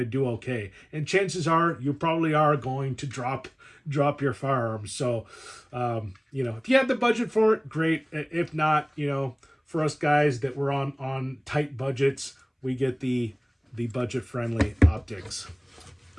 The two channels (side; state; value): both; identical; correlation 1.00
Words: do okay. And chances are you probably are going to drop your firearms. So, if you have the budget for it, great. If not, for us guys that were on tight budgets, we get the budget-friendly optics.